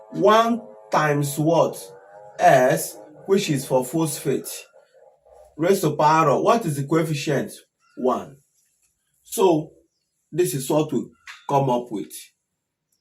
1 times what? S, which is for phosphate. Raised to power of, what is the coefficient? 1. So, this is what we come up with.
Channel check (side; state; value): both; identical; correlation 1.00